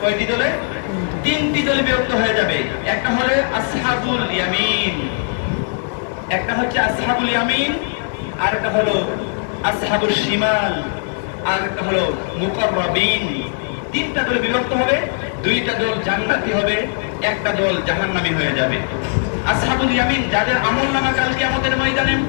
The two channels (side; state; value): right; silent; digital silence